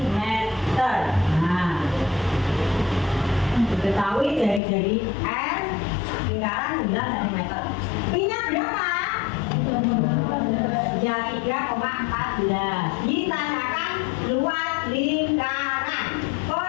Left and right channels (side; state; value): right; drops out; at 4.6 s